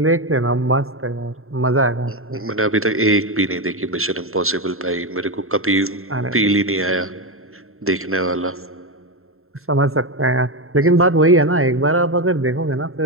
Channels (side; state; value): left; late; 0.62 ms